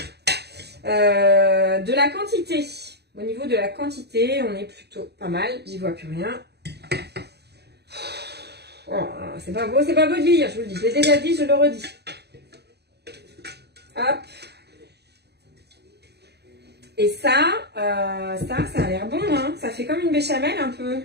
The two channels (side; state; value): left; late; 0.48 ms